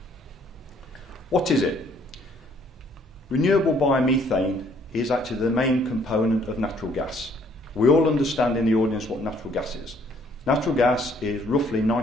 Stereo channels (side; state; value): both; normal; correlation 0.63